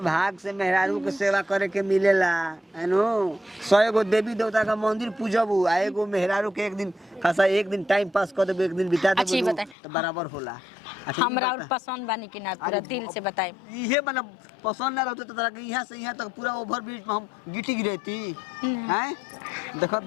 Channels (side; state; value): right; drops out; at 9.8 s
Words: भाग से मेहरारू के सेवा करे के मिलेला है नो 100 गो देवी देवता का मंदिर पूजबू आ एगो मेहरारू के एक दिन खासा एक दिन टाइम पास कर देबू एक दिन बिता अच्छी देबू बताई। तो बराबर होला। अच्छा, हमरा ई और बता। पसंद बानी कि ना पूरा अरे दिल से बताए। इहे मतलब पसंद ना रहते तो तोरा के यहाँ से यहाँ तक पूरा ओवर ब्रिज में हम गिटी गिरती हैं देखो